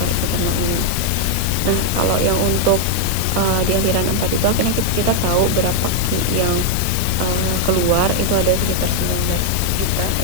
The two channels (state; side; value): different; both; correlation 0.00